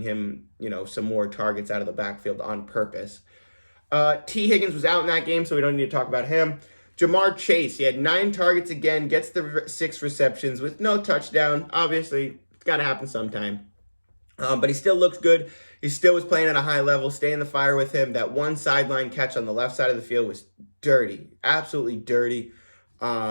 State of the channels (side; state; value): both; inverted; correlation -1.00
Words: him, some more targets out of the backfield on purpose. T. Higgins was out in that game, so we don't need to talk about him. Jamar Chase, he had 9 targets again, gets the 6 receptions with no touchdown. Obviously, it's got to happen sometime. But he still looks good. He still was playing at a high level. Stay in the fire with him. That one sideline catch on the left side of the field was dirty. Absolutely dirty.